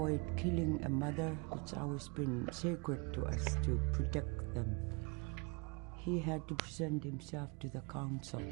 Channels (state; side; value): quieter; left; 30.8 dB